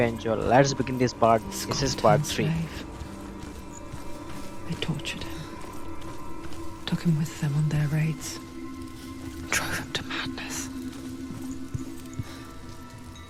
Let's begin this part. a This is part scorn-turned 3. slave. They tortured him, took him with them on their raids, drove him to madness,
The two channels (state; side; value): identical; both; correlation 1.00